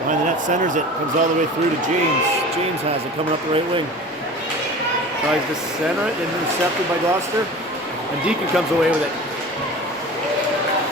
behind the net, centers it. Comes all the way through to James. James has it coming up the right wing. Tries to center it, intercepted by Gloucester. And Deacon comes away with it.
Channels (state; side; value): normal; both; correlation 0.37